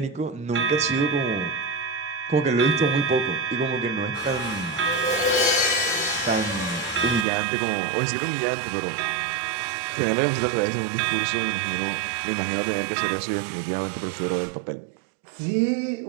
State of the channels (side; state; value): left; drops out; at 7.2 s